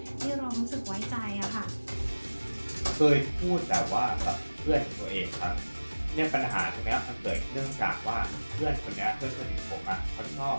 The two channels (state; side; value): inverted; both; correlation -1.00